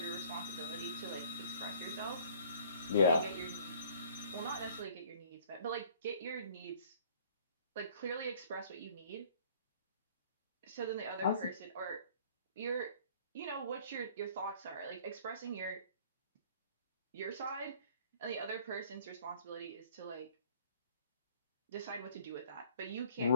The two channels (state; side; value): inverted; both; correlation -0.54